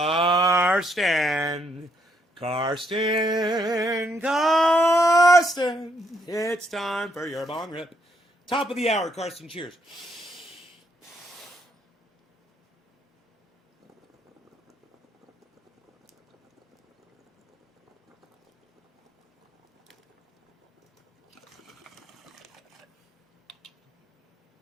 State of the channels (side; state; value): both; normal; correlation 0.73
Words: It's time for your bong rip. Top of the hour, Karsten. Cheers.